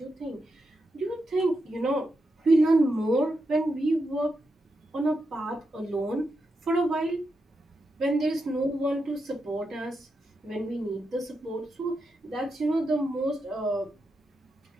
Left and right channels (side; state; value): both; normal; correlation 0.86